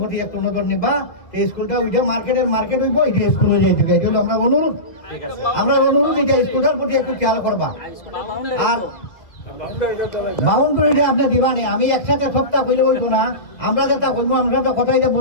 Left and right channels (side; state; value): right; late; 2.2 ms